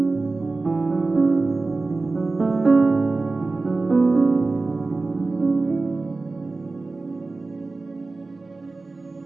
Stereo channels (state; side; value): quieter; left; 3.5 dB